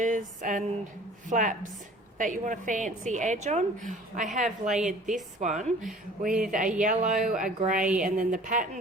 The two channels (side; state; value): both; normal; correlation 0.48